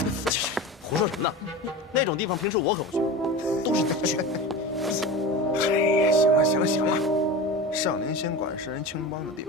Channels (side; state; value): both; normal; correlation 0.30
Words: 胡说什么呢？那种地方平时我可不去，都是你去。哎呀，行了行了行了，上林仙馆是人青帮的地